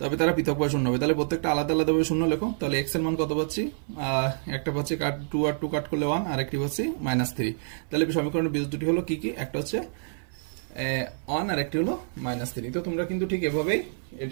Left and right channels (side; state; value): left; silent; 56 dB below the other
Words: তবে তারা পৃথকভাবে শূন্য হবে। তাহলে প্রত্যেকটা আলাদা আলাদাভাবে শূন্য লেখো। তাহলে x এর মান কত পাচ্ছি, একটা পাচ্ছি 2 আর 2 কাট করলে 1, আর একটি পাচ্ছি -3। তাহলে সমীকরণের বীজ দুটি হলো কি কি, একটা হচ্ছে 1 আর একটি হলো -3। তো তোমরা কিন্তু ঠিক এভাবেই